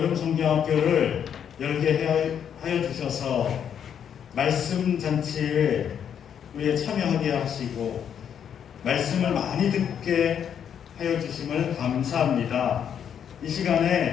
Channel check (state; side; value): quieter; right; 8.5 dB